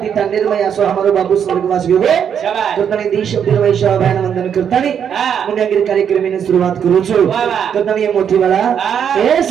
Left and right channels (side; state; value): left; quieter; 8.1 dB